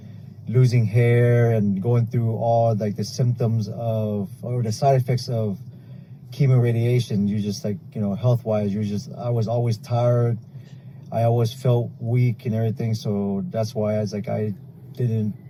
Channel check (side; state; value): both; identical; correlation 1.00